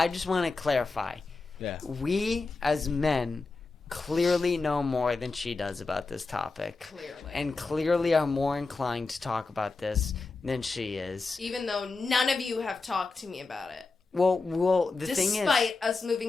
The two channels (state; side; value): quieter; right; 3.9 dB